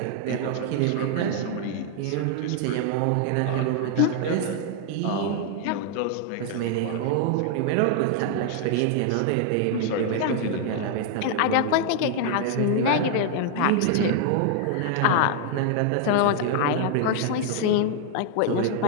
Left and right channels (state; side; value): different; both; correlation 0.00